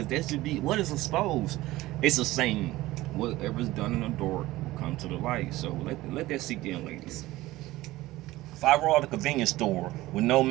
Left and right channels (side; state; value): left; quieter; 17.7 dB